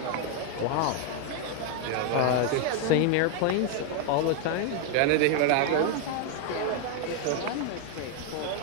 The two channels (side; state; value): both; different; correlation 0.01